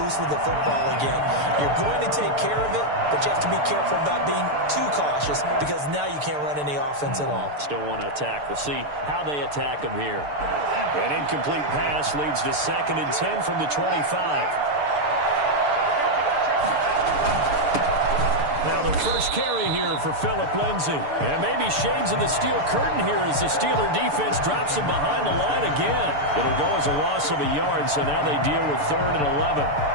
loose with the football again. You're going to take care of it, but you have to be careful about being too cautious because now you can't run any offense at all. Still want to attack. We'll see how they attack them here. An incomplete pass leads to 2nd and 10 from the 25. Now the first carry here for Phillip Lindsay. And maybe shades in the steel curtain here as the Steeler defense drops him behind the line again. It'll go as a loss of a yard, so now they deal with 3rd and 11.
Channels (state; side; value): late; left; 6.8 ms